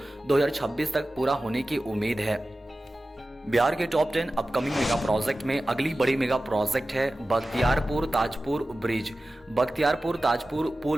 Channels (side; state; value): both; normal; correlation 0.95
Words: 2026 तक पूरा होने की उम्मीद है। बिहार के टॉप 10 अपकमिंग मेगा प्रोजेक्ट में अगली बड़ी मेगा प्रोजेक्ट है बख्तियारपुर ताजपुर ब्रिज। बख्तियारपुर ताजपुर